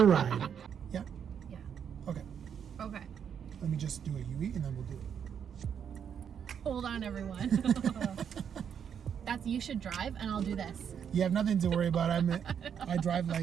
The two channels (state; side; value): quieter; left; 7.9 dB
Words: a ride. Yeah. Yeah. Okay. Okay. Let me just do a UE and then we'll do it. Hold on, everyone. That's you should drive, and I'll do this. You have nothing to worry about. I drive